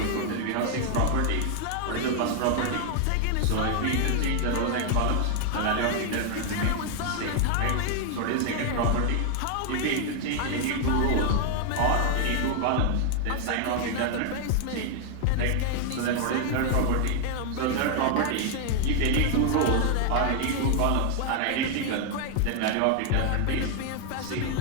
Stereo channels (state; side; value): different; both; correlation 0.00